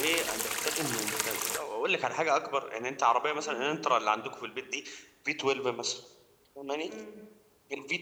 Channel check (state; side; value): identical; both; correlation 1.00